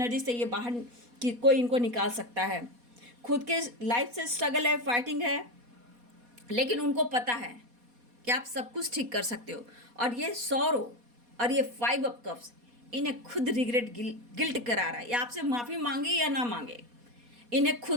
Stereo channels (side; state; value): left; late; 4.2 ms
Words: से ये बाहर की कोई इनको निकाल सकता है। खुद के लाइफ से स्ट्रगल है, फाइटिंग है, लेकिन उनको पता है कि आप सब कुछ ठीक कर सकते हो। और ये सॉरो और ये 5 ऑफ कप्स इन्हें खुद रिग्रेट, गिल्ट करा रहा है। ये आपसे माफ़ी मांगे या ना मांगे, इन्हें